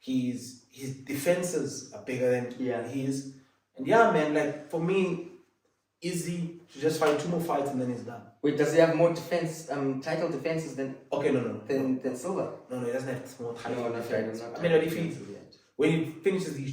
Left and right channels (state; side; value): identical; both; correlation 1.00